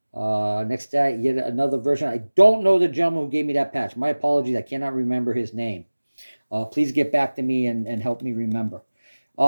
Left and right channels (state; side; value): inverted; both; correlation -1.00